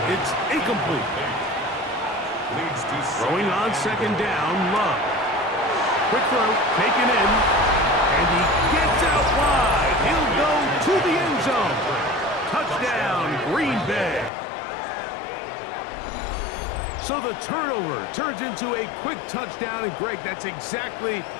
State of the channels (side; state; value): right; drops out; at 14.3 s